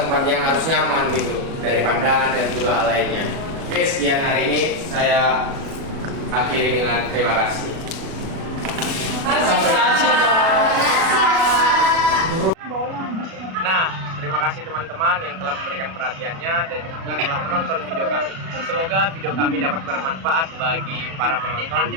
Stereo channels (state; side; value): late; left; 37 ms